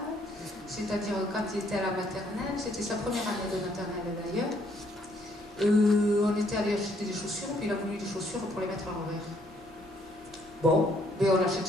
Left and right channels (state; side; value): normal; both; correlation 0.68